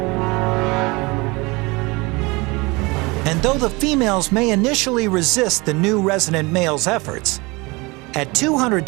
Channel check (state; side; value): quieter; left; 25.0 dB